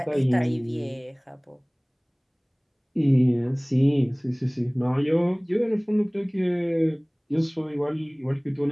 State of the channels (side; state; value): both; identical; correlation 1.00